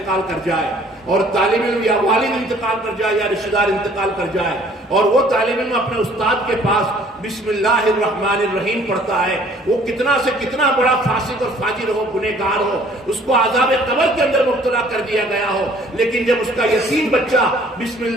کر جائے اور طالب علم یا والد انتقال کر جائے یا رشتہ دار انتقال کر جائے اور وہ طالب علم اپنے استاد کے پاس بسم اللہ الرحمن الرحیم پڑھتا ہے، وہ کتنا سے کتنا بڑا فاسق اور فاجر ہو، گنہگار ہو، اس کو عذاب قبر کے اندر مبتلا کر دیا گیا ہو، لیکن جب اس کا یتیم بچہ بسم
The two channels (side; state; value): both; normal; correlation 0.56